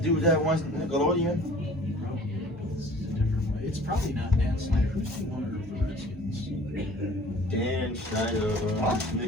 that wants Nickelodeon? It's probably not Dan Snyder. Who's the owner of the Redskins? Dan Snyder,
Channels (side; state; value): both; normal; correlation 0.49